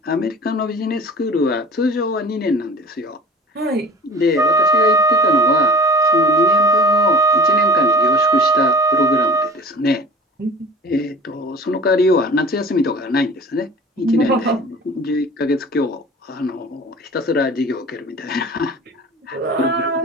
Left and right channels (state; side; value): normal; both; correlation 0.41